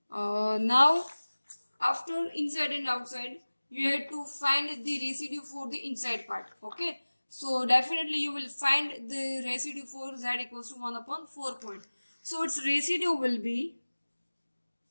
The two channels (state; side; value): inverted; both; correlation -1.00